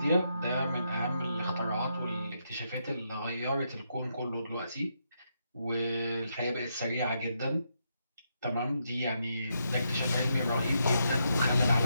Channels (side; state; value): both; inverted; correlation -0.80